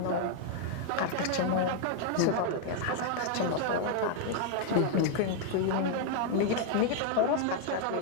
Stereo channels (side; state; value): both; different; correlation 0.00